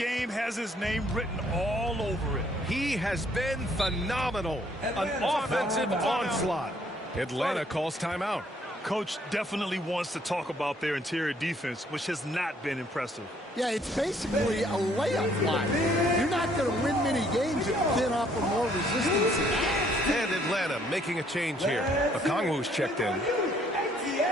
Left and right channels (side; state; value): both; normal; correlation 0.65